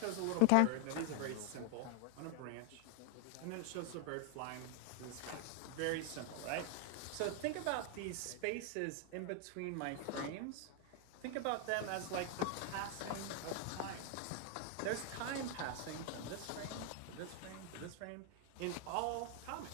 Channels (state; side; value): different; both; correlation 0.00